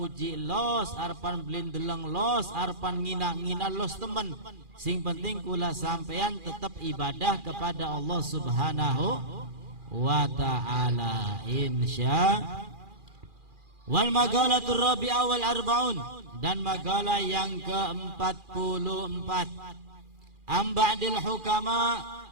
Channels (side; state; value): left; late; 2.4 ms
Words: los, arepan belin deleng los, arepan ngina los temen. Sing penting kula sampean tetap ibadah kepada Allah Subhanahu wa ta'ala, insya. Wal magalatur rabi'ah wal arba'un, dan magalah yang ke-44. Amba'dil hukama,